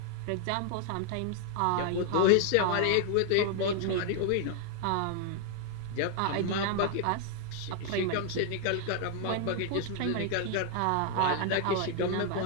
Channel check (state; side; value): different; both; correlation 0.00